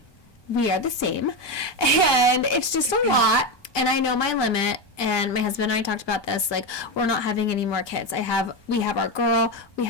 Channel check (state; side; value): late; right; 1.2 ms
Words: we are the same, and it's just a lot, and I know my limit, and my husband and I talked about this, we're not having any more kids. We have our girl, we